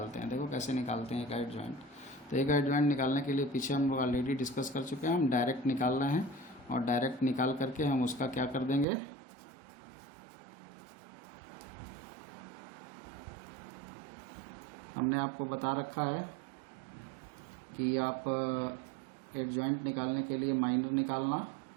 हैं, देखो कैसे निकालते हैं A का एडजॉइंट। तो A का एडजॉइंट निकालने के लिए पीछे हम लोग ऑलरेडी डिस्कस कर चुके हैं, हम डायरेक्ट निकाल रहे हैं। और डायरेक्ट निकाल करके हम उसका क्या कर देंगे? हमने आपको बता रखा है कि आप एडजॉइंट निकालने के लिए माइनर निकालना,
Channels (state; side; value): drops out; left; at 8.8 s